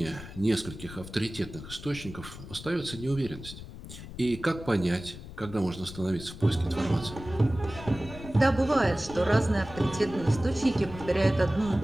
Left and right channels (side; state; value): left; noise; rumble, 13 dB below the sound